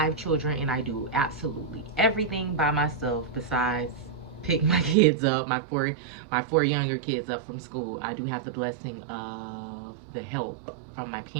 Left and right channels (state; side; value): drops out; left; at 5.0 s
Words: children, and I do absolutely everything by myself besides pick my kids up, my four younger kids up from school. I do have the blessing of the help from my